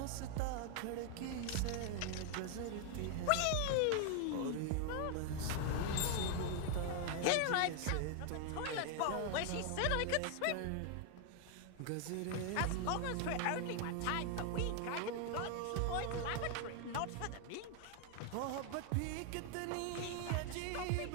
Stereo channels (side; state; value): both; different; correlation 0.00